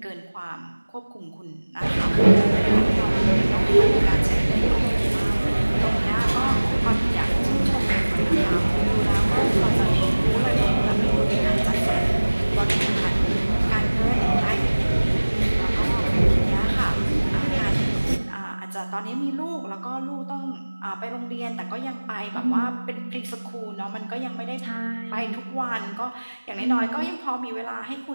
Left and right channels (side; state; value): both; inverted; correlation -1.00